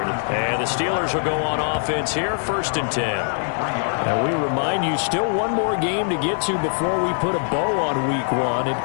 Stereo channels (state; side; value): silent; right; digital silence